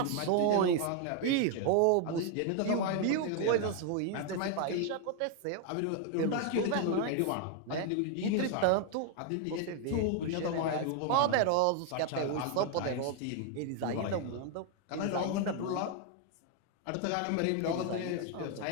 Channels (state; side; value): different; both; correlation 0.00